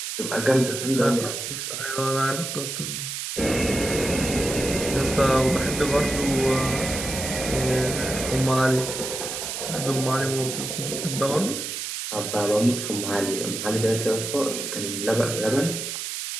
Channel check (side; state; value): right; noise; hiss, 5 dB below the sound